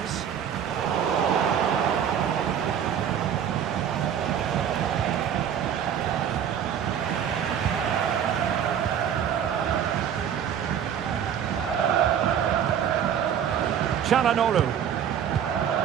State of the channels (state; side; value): quieter; left; 8.9 dB